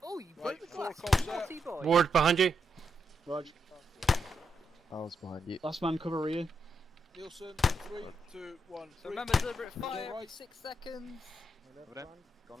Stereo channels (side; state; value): both; normal; correlation 0.81